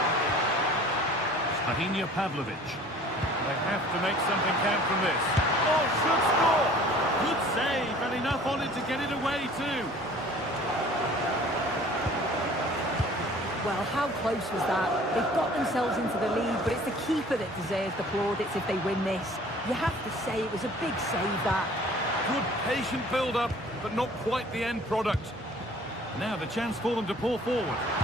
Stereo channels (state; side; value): normal; both; correlation 0.50